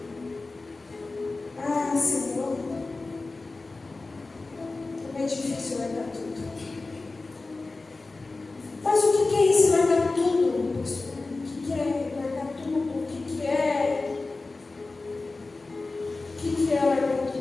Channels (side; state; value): right; quieter; 3.5 dB